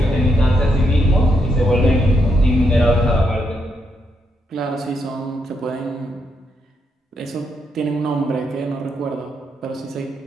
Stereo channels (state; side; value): normal; both; correlation 0.79